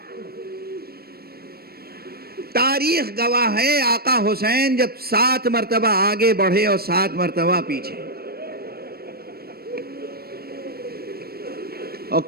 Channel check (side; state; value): left; late; 0.45 ms